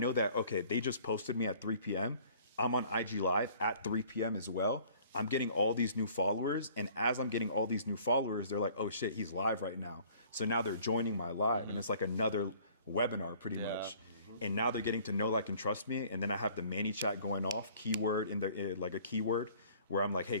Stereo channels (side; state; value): both; inverted; correlation -0.54